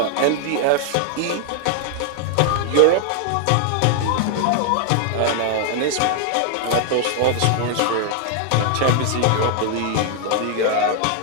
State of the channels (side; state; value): both; different; correlation 0.00